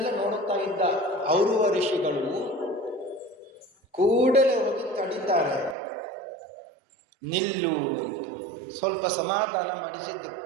ನೋಡುತ್ತಾ ಇದ್ದ ಔರುವ ಋಷಿಗಳು ಕೂಡಲೇ ಹೋಗಿ ತಡಿದ್ದಾರೆ. ನಿಲ್ಲು, ಸ್ವಲ್ಪ ಸಮಾಧಾನ ಮಾಡಿಸಿದ್ದು.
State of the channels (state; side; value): drops out; left; at 5.8 s